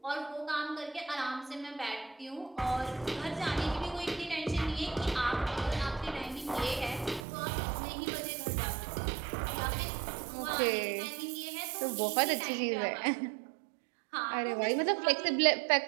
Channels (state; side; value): drops out; left; at 7.2 s